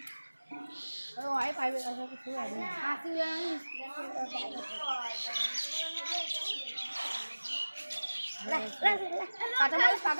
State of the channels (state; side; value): inverted; both; correlation -1.00